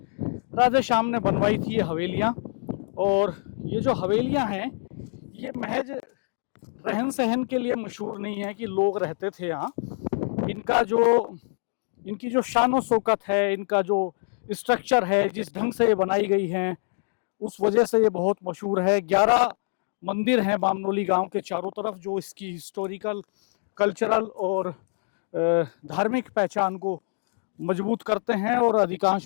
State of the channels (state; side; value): silent; right; digital silence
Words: राधे श्याम ने बनवाई थी ये हवेलियाँ। और ये जो हवेलियाँ हैं ये महज रहन सहन के लिए मशहूर नहीं है कि लोग रहते थे यहाँ। इनकी जो शान शौकत है, इनका जो स्ट्रक्चर है, जिस ढंग से ये बनाई गई हैं, उस वजह से ये बहुत मशहूर है। 11 मंदिर हैं बामनोली गांव के चारों तरफ, जो इसकी हिस्टोरिकल, कल्चरल और धार्मिक पहचान को मजबूत करते हैं। और